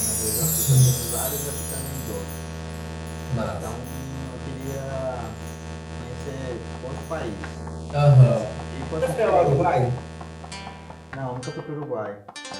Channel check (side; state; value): both; identical; correlation 1.00